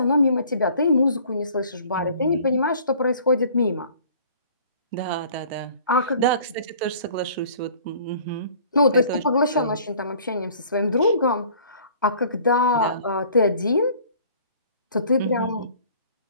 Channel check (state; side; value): inverted; both; correlation -0.51